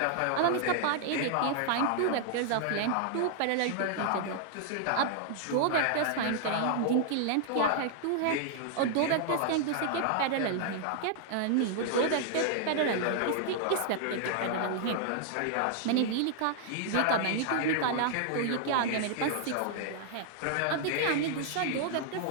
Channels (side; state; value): both; different; correlation -0.01